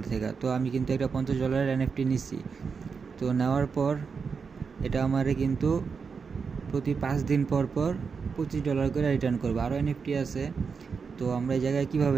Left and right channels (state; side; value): quieter; left; 5.5 dB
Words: থেকে। তো আমি কিন্তু একটা $50 এনএফটি নিচ্ছি। তো নেওয়ার পর এটা আমারে কিন্তু প্রতি 5 দিন পর পর $25 করে রিটার্ন করবো। আরও এনএফটি আছে। তো আমরা এই জায়গায়